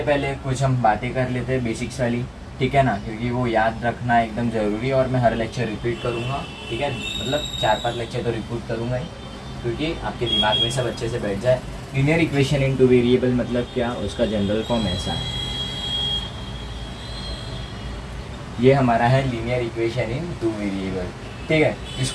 पहले कुछ हम बातें कर लेते हैं बेसिक्स वाली। ठीक है ना, क्योंकि वो याद रखना एकदम ज़रूरी है और मैं हर लेक्चर रिपीट करूँगा। ठीक है, मतलब 4-5 लेक्चर तो रिपीट करूँगा ही, क्योंकि आपके दिमाग में सब अच्छे से बैठ जाए। Linear equation in two variable मतलब क्या, उसका जनरल फॉर्म ऐसा है। ये हमारा है लीनियर इक्वेशन इन 2 वेरिएबल। ठीक है,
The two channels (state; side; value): identical; both; correlation 1.00